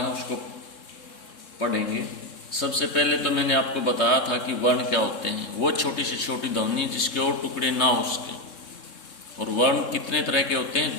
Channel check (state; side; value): late; right; 3.6 ms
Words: उसको पढ़ेंगे। सबसे पहले तो मैंने आपको बताया था कि वर्ण क्या होते हैं। वो छोटी से छोटी ध्वनि जिसके और टुकड़े ना हो उसके। और वर्ण कितने तरह के होते